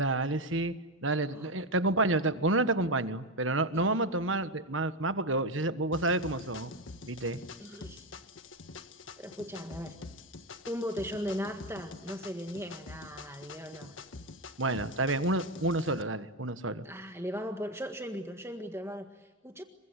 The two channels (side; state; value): both; normal; correlation 0.13